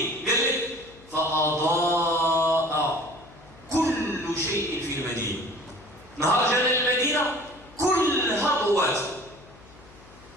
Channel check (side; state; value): left; noise; hum, 24 dB below the sound